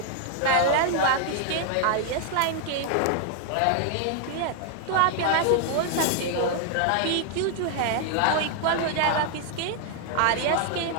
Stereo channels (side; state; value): both; different; correlation 0.00